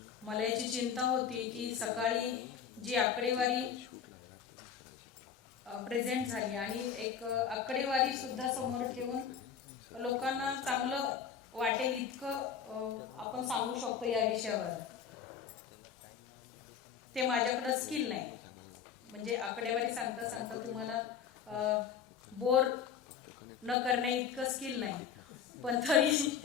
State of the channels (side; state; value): right; quieter; 7.6 dB